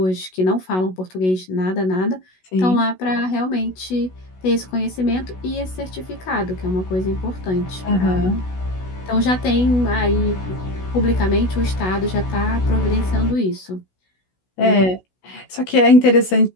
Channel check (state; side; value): late; right; 16 ms